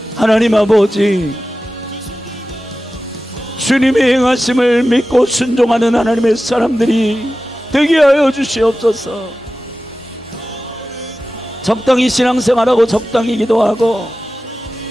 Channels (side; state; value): both; normal; correlation 0.95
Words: 하나님 아버지 주님의 행하심을 믿고 순종하는 하나님의 사람들이 되게 하여 주시옵소서. 적당히 신앙생활하고 적당히 기도하고